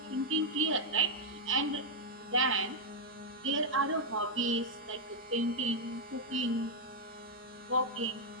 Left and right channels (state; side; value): normal; both; correlation -0.02